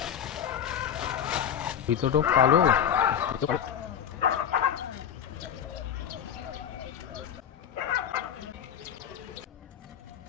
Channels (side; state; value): right; quieter; 8.9 dB